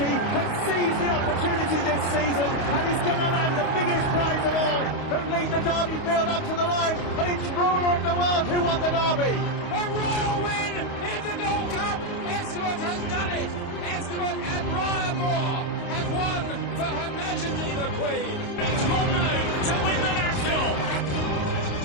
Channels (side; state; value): right; late; 28 ms